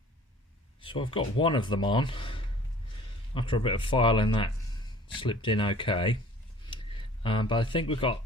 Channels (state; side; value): normal; both; correlation 0.49